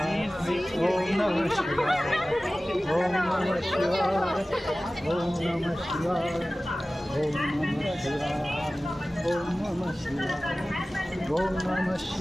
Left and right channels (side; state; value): both; normal; correlation 0.97